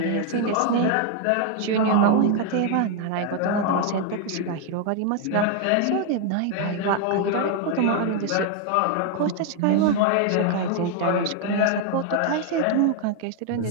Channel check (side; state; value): both; different; correlation 0.00